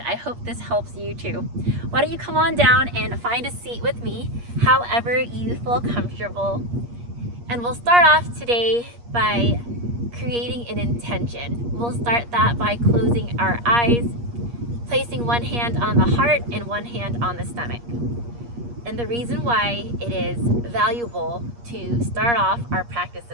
I hope this helps you too. Why don't you come on down and find a seat with me, however you feel comfortable. And we'll start off today by creating an intention. We'll start that by closing our eyes, placing one hand on the heart and one hand on the stomach. And the reason why it is valuable to start off our practice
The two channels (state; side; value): late; left; 8.5 ms